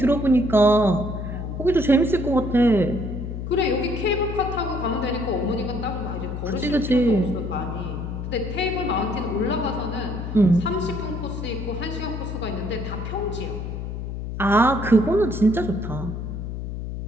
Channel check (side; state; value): left; noise; hum, 6 dB below the sound